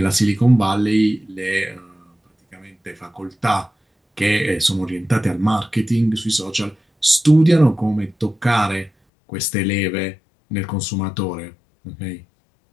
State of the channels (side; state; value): right; drops out; at 8.9 s